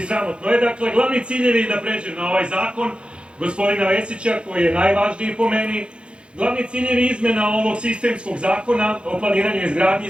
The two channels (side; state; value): left; late; 0.057 ms